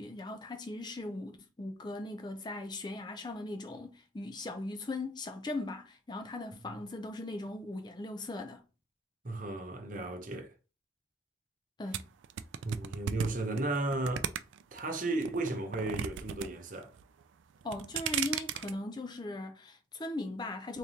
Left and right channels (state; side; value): normal; both; correlation 0.57